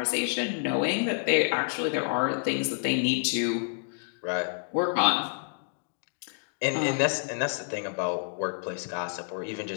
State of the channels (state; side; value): silent; right; digital silence